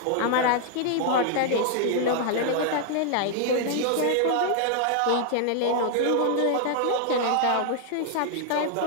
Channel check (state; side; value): different; both; correlation 0.00